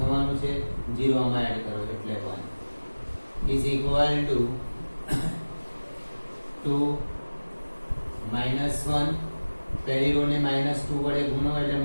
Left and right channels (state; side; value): inverted; both; correlation -1.00